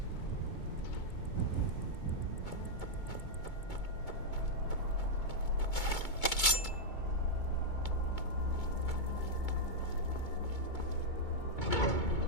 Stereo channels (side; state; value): right; late; 2.2 ms